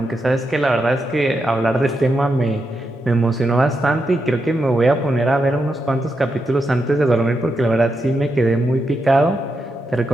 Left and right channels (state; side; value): normal; both; correlation 0.85